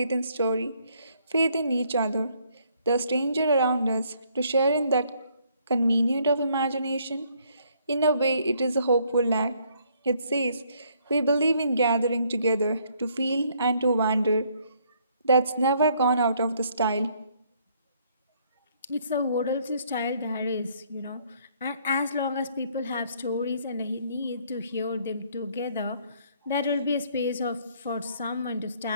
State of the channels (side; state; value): both; inverted; correlation -0.67